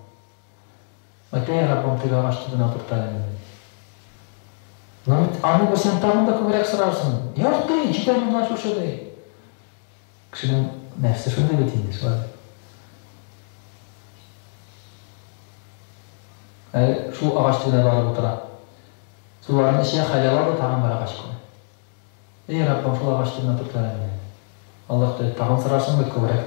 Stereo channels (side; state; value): right; silent; 59 dB below the other